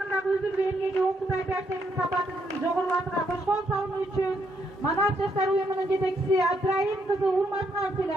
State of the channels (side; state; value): both; normal; correlation 0.75